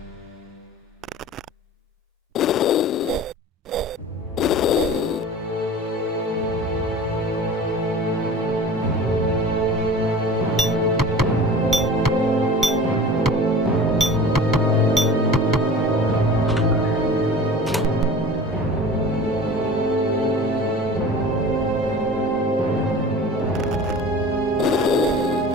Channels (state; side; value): normal; both; correlation 0.39